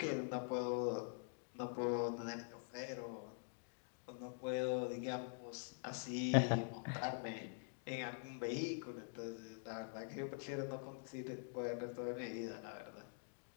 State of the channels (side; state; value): right; silent; digital silence